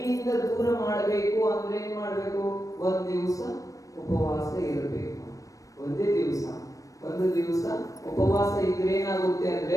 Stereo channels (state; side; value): late; right; 0.16 ms